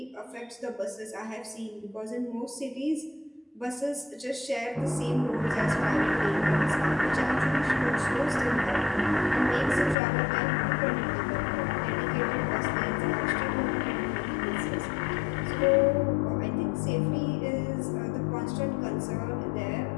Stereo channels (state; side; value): drops out; right; at 10.0 s